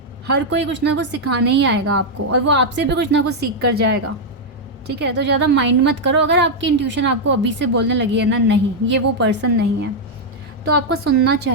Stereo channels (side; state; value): both; normal; correlation -0.01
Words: हर कोई कुछ ना कुछ सिखाने ही आएगा आपको, और वो आपसे भी कुछ ना कुछ सीख कर जाएगा, ठीक है. तो ज़्यादा माइंड मत करो. अगर आपकी इंट्यूशन आपको अभी से बोलने लगी है ना नहीं ये वो पर्सन नहीं है, तो आपको सुनना